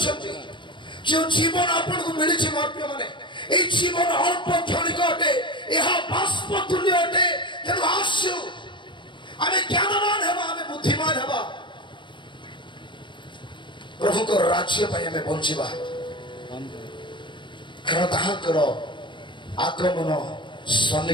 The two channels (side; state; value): right; late; 0.23 ms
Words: ଯେଉଁ ଜୀବନ ଆପଣଙ୍କୁ ମିଳିଛି ମୋର ପ୍ରିୟମାନେ, এই জীবন অল্প ক্ষণিক অটে, ଏହା ବାଷ୍ପ ତୁଲ୍ୟ ଅଟେ। ତେଣୁ ଆସୁ ଆମେ ଜ୍ଞାନବାନ ହେବା, ଆମେ ବୁଦ୍ଧିମାନ ହେବା, ପ୍ରଭୁଙ୍କ ରାଜ୍ୟ ପାଇଁ ଆମେ ବଞ୍ଚିବା। କାରଣ ତାହାଙ୍କର ଆଗମନ